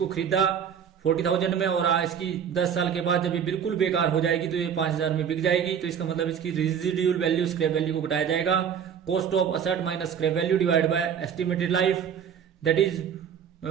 खरीदा 40,000 में और इसकी 10 साल के बाद जब ये बिल्कुल बेकार हो जाएगी तो ये 5,000 में बिक जाएगी। तो इसका मतलब इसकी रेजिडुअल वैल्यू स्क्रैप वैल्यू को घटाया जाएगा। Cost of asset minus scrap value divide by estimated life that is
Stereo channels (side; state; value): left; quieter; 8.0 dB